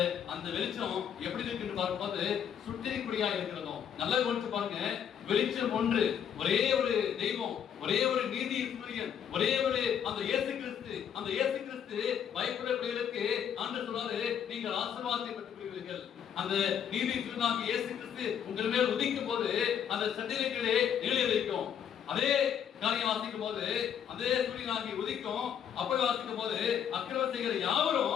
அந்த வெளிச்சம் எப்படி இருக்குன்னு பார்க்கும்போது சுட்டரிக்கூடியா இருக்கிறதும். நல்லா கவனிச்சு பாருங்க, வெளிச்சம் ஒன்று, ஒரே ஒரு தெய்வம், ஒரே ஒரு நீதி சூரியன், ஒரே ஒரு அந்த இயேசு கிறிஸ்து. அந்த இயேசு கிறிஸ்து பயப்பட பிள்ளைகளுக்கு ஆண்டவர் சொல்றாரு, நீங்கள் ஆசீர்வாதத்தை பெற்றுக்கொள்வீர்கள். அந்த நீதி சூரியனாகிய இயேசு கிறிஸ்து உங்கள் மேல் உதிக்கும் போது அந்த சட்டிலைகளே நிலை வைக்கும். அதே காரியம் வாசிக்கும் போது அதே சூரியனாகி உதிக்கும். அப்படி வாசிக்கும் போது அக்கிரமம் செய்கிற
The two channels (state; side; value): quieter; right; 8.6 dB